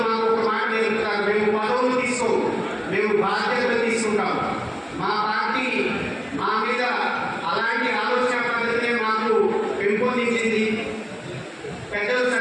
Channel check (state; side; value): identical; both; correlation 1.00